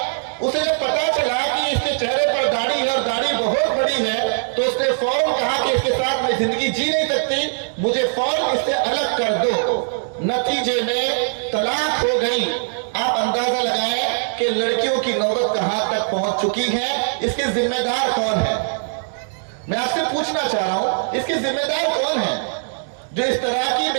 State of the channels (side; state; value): left; silent; digital silence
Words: اسے جب پتا چلا کہ اس کے چہرے پر داڑھی ہے اور داڑھی بہت بڑی ہے تو اس نے فوراً کہا کہ اس کے ساتھ میں زندگی جی نہیں سکتی، مجھے فوراً اس سے الگ کر دو۔ نتیجے میں طلاق ہو گئی۔ آپ اندازہ لگائیں کہ لڑکیوں کی نوبت کہاں تک پہنچ چکی ہے۔ اس کے ذمہ دار کون ہے؟ میں آپ سے پوچھنا چاہ رہا ہوں اس کے ذمہ دار کون ہے؟ جو اس طرح کی